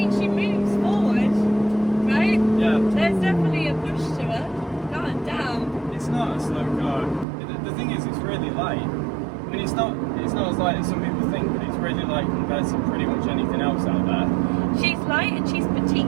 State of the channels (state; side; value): drops out; left; at 7.2 s